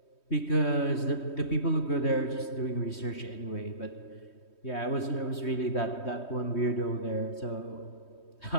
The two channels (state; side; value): late; right; 3.2 ms